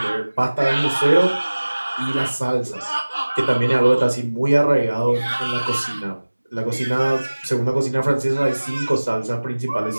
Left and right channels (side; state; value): both; inverted; correlation -1.00